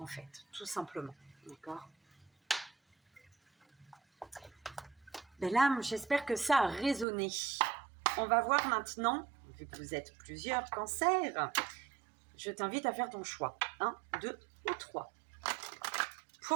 fait, tout simplement, d'accord. Belle âme, j'espère que ça a résonné. On va voir maintenant, vu que vous êtes plusieurs cancers, je t'invite à faire ton choix. 1, 2 ou 3.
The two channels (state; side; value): drops out; left; at 7.1 s